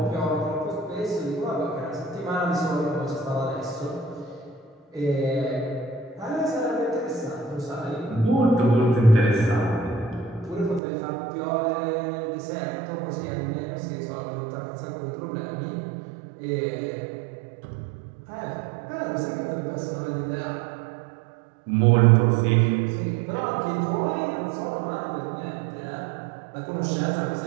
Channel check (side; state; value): left; drops out; at 10.8 s